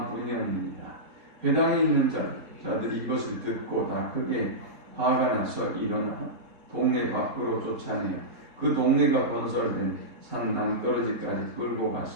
뿐이었느니라. 회당에 있는 자들이 이것을 듣고 다 크게 화가 나서 일어나 동네 밖으로 쫓아내어 그 동네가 건설된 산 낭떠러지까지 끌고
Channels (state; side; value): late; left; 3.8 ms